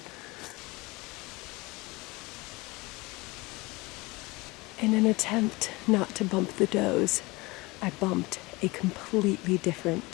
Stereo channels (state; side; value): quieter; right; 23.3 dB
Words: In an attempt not to bump the does, I bumped a completely different